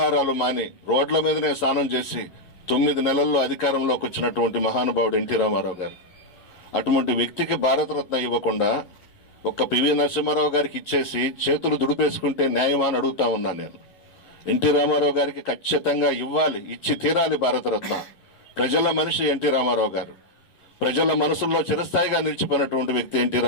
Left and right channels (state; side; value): late; right; 11 ms